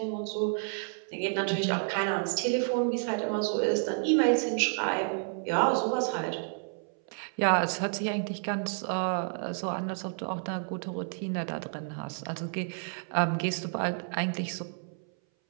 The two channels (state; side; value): silent; left; 58 dB below the other